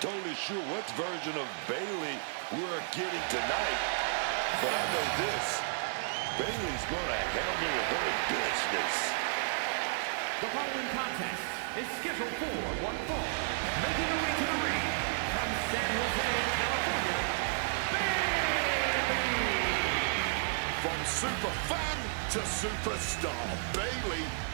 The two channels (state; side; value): silent; left; digital silence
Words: sure what version of Bayley we're getting tonight, but I know this. Bayley's going to handle her business. The following contest is scheduled for one fall. Making her way to the ring from San Jose, California, Bayley! From super fan to superstar, Bayley